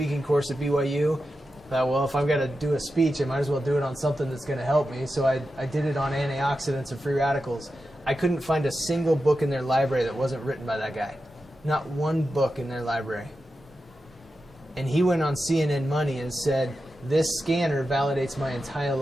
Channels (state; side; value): normal; both; correlation 0.90